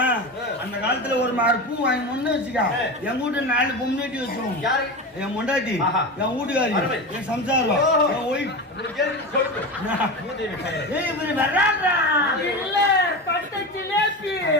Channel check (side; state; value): both; normal; correlation 0.24